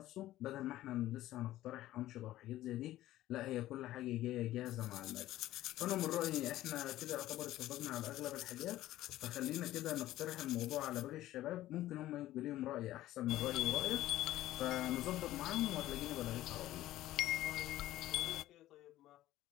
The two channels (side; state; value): right; quieter; 14.9 dB